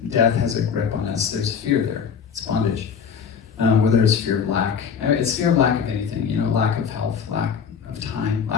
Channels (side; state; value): right; quieter; 6.8 dB